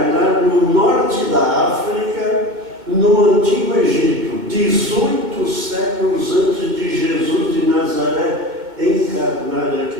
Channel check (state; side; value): late; left; 2.1 ms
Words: no norte da África, no Antigo Egito, 18 séculos antes de Jesus de Nazaré encarnar